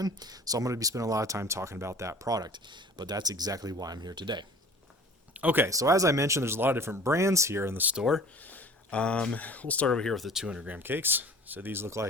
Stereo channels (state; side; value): normal; both; correlation 0.45